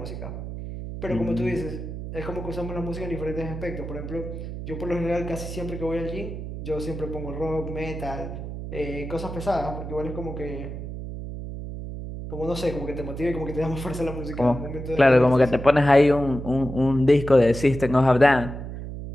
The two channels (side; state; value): right; noise; hum, 8 dB below the sound